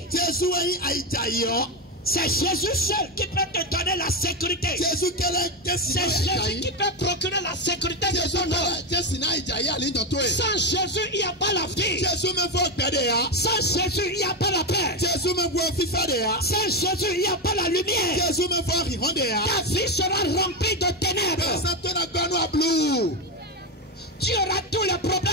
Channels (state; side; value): normal; both; correlation 0.12